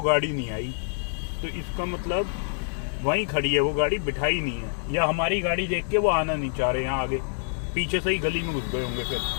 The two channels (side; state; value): right; silent; digital silence